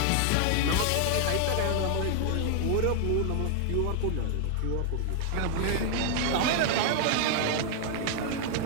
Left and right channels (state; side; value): different; both; correlation 0.00